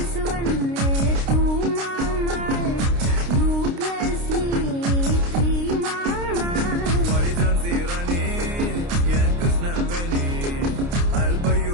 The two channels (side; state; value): left; late; 29 ms